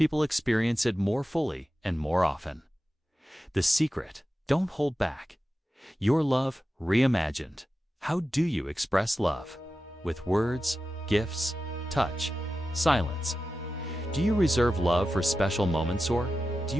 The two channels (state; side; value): normal; both; correlation 0.92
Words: experience it more fully and more often. The secret: don't hold back. Your love reimagined. How do you express love? With words, gifts, touch, silence. Do you reserve love for special moments, or do